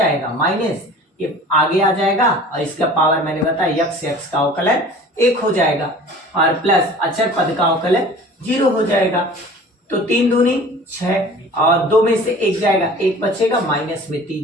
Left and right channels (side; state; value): both; normal; correlation 0.44